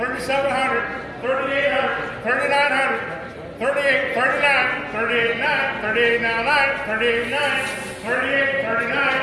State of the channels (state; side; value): identical; both; correlation 1.00